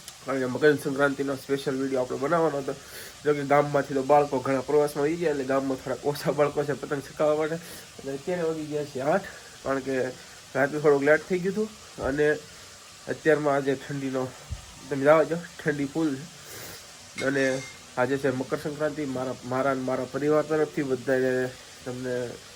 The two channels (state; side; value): identical; both; correlation 1.00